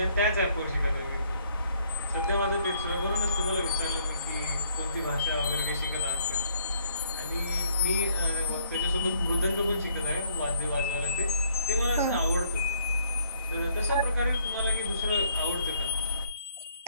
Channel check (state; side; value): inverted; both; correlation -0.66